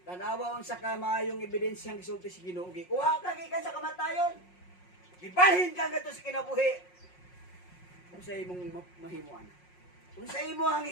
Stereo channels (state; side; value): late; right; 5.5 ms